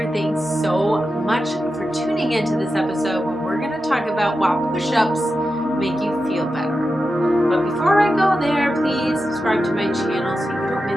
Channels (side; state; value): both; normal; correlation 0.90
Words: Thanks so much for tuning into this episode where we're going to talk about why push-ups make you feel better. But before I go there, please subscribe to my channel so you don't